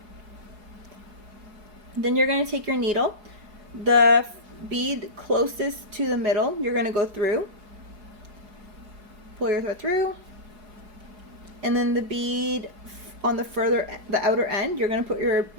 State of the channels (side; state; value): left; late; 4.8 ms